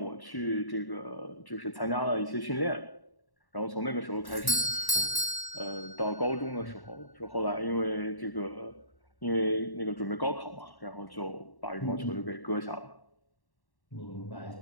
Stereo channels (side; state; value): right; late; 1.1 ms